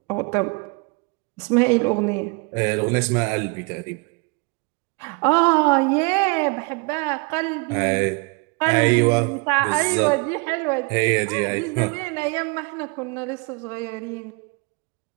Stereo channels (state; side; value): quieter; left; 29.4 dB